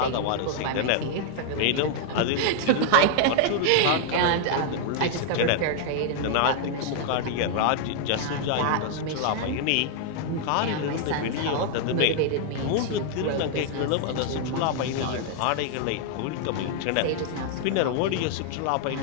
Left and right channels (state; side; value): different; both; correlation 0.00